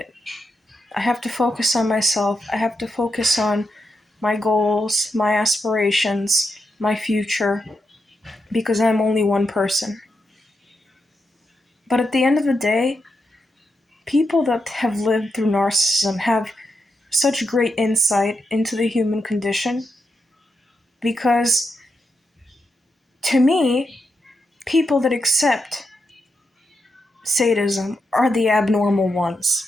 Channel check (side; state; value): both; normal; correlation 0.85